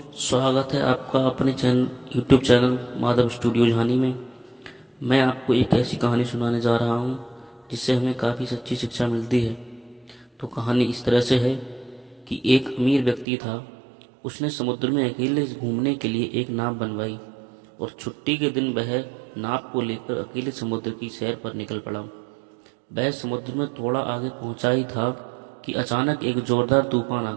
स्वागत है आपका अपने यूट्यूब चैनल माधव स्टूडियो झानी में। मैं आपको एक ऐसी कहानी सुनाने जा रहा हूँ जिससे हमें काफ़ी सच्ची शिक्षा मिलती है। तो कहानी इस तरह से है कि एक अमीर व्यक्ति था। उसने समुद्र में अकेले घूमने के लिए एक नाव बनवाई और छुट्टी के दिन वह नाव को लेकर अकेले समुद्र की सैर पर निकल पड़ा। वह समुद्र में थोड़ा आगे पहुंचा ही था कि अचानक एक जोरदार तूफान आ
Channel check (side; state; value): left; drops out; at 13.2 s